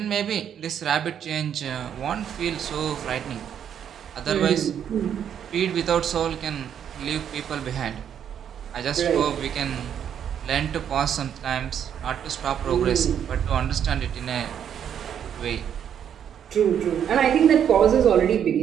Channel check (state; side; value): quieter; left; 8.9 dB